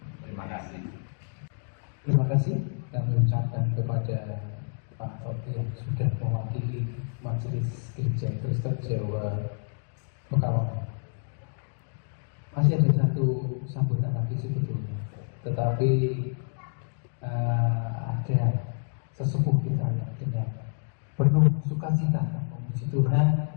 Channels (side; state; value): right; silent; digital silence